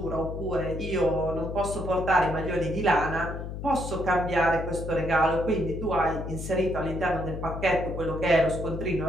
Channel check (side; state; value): left; noise; hum, 7 dB below the sound